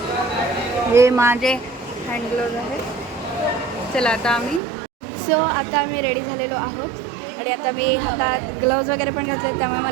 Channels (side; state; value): left; drops out; at 4.6 s